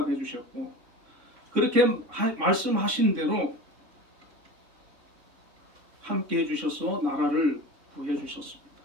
주셨고 그렇게 말씀하신 대로 함께 해주셔서 나라를 구해 주셨습니다.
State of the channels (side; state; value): left; late; 3.6 ms